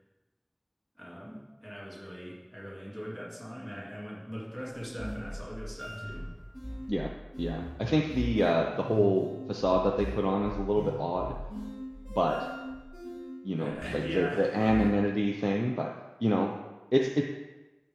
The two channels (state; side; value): identical; both; correlation 1.00